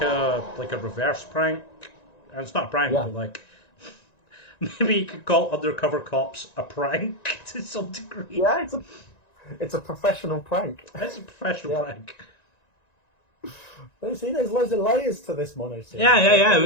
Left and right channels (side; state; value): right; late; 1.9 ms